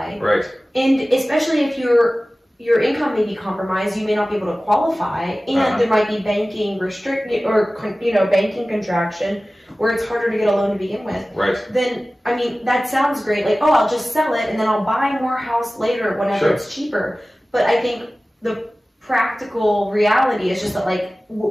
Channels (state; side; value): normal; both; correlation 0.97